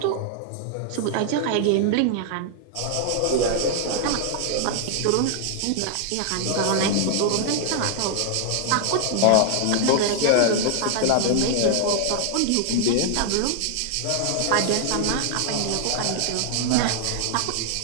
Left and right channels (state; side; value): different; both; correlation 0.00